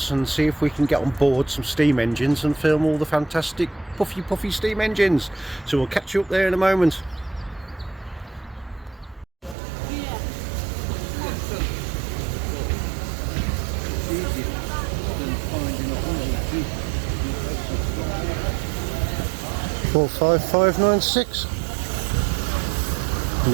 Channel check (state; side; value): drops out; left; at 9.6 s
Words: and see if we can get on board some steam engines and film all the fantastic puffy steam engines. So we'll catch you up there in a moment. Four 5596. And